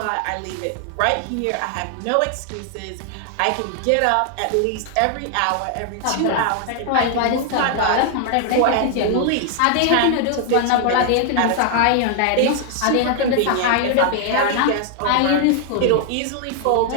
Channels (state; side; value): different; both; correlation 0.00